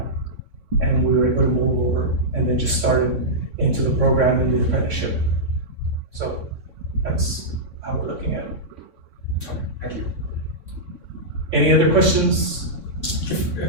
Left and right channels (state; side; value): late; left; 3.6 ms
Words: And we were able to move over and then just started into the program in the apprenticeship. So that's how we're looking at it. Okay, thank you. Any other questions?